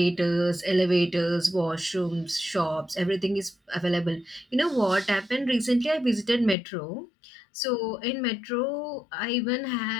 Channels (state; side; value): drops out; right; at 6.6 s